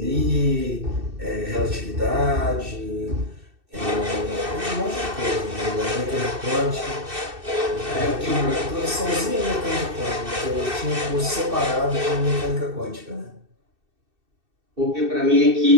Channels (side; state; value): left; late; 2.6 ms